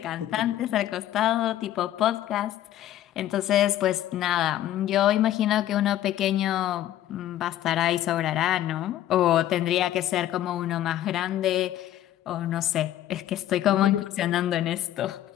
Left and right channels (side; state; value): right; quieter; 12.7 dB